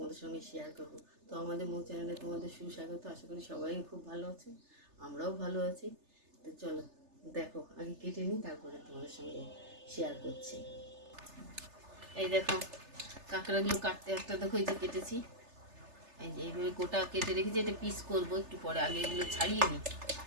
সঙ্গে শেয়ার করব। তো আমাদের মৌ চ্যানেলে তোমাদের সুস্বাগত। আশা করি সবাই খুব ভালো আছে, আমরাও ভালো আছি। তো চলো দেখো, আগে কেটে নিই, তারপরে তোমাদের সঙ্গে শেয়ার করছি। এই দেখো কাঁকড়াগুলো কাটতে একটা দেখো, এই যে কেটেছি, এই যে এইভাবে গোটা কেটে রেখেছি। এটা পিস করবো একটু পরে, আগে এগুলো ছাড়িয়ে নিই।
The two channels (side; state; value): left; late; 3.3 ms